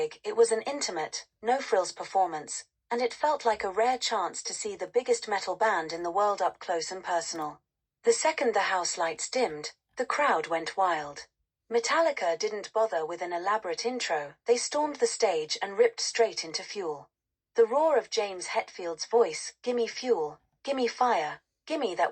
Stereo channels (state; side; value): identical; both; correlation 1.00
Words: it was an intimate, no-frills performance, and it felt like a rare chance to see the biggest metal band in the world up close and personal. The second the house lights dimmed, the crowd went wild. Metallica didn't bother with an elaborate intro, they stormed the stage and ripped straight into Fuel. The roar of James Hetfield's voice, "Gimme fuel, gimme fire, gimme